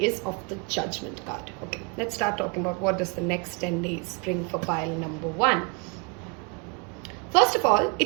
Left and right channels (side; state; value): left; quieter; 31.2 dB